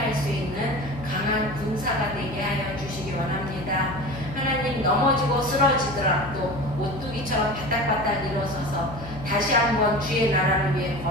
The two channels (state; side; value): noise; left; hum, 12 dB below the sound